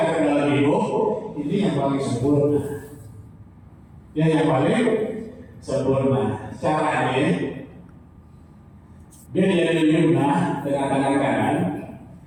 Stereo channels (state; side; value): identical; both; correlation 1.00